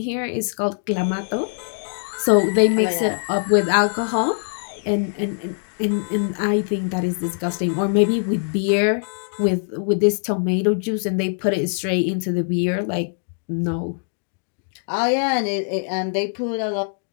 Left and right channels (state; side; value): silent; right; digital silence